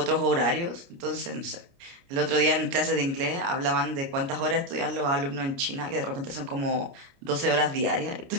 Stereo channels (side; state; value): left; late; 29 ms